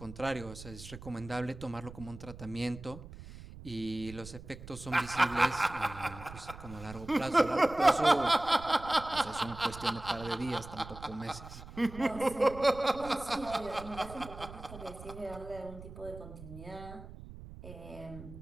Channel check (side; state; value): right; noise; rumble, 14 dB below the sound